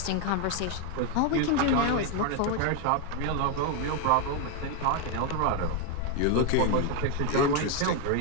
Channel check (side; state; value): both; different; correlation 0.01